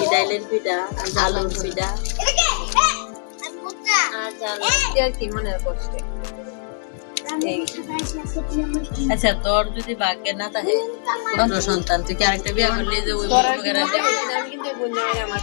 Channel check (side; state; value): right; silent; digital silence